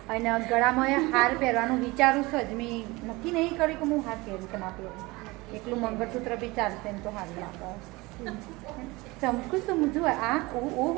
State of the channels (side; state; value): left; quieter; 22.7 dB